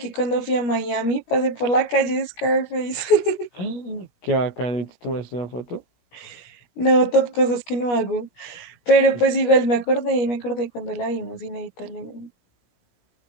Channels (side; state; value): right; late; 17 ms